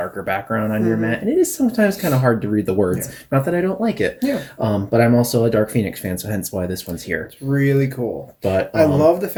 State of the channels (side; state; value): both; identical; correlation 1.00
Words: background on your mat, and it is sometimes kind of hard to read the words. Yeah. Not that I don't like it. Yeah. But I'm also a Dark Phoenix fan, so hence why this one's here. It's really cool. But I love the